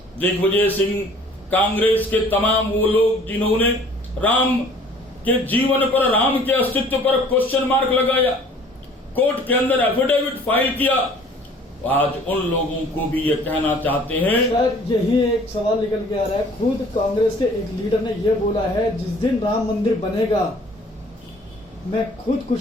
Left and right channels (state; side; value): normal; both; correlation 0.53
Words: दिग्विजय सिंह, कांग्रेस के तमाम वो लोग जिन्होंने राम के जीवन पर, राम के अस्तित्व पर क्वेश्चन मार्क लगाया, कोर्ट के अंदर एफिडेविट फाइल किया, आज उन लोगों को भी ये कहना चाहते हैं। सर, यही एक सवाल निकल के आ रहा है। खुद कांग्रेस के एक लीडर ने यह बोला है, जिस दिन राम मंदिर बनेगा मैं